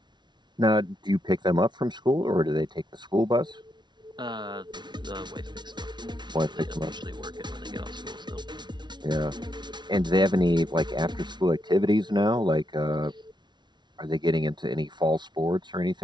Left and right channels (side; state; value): left; late; 0.21 ms